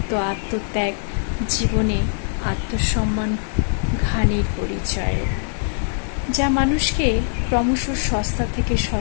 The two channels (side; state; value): right; silent; digital silence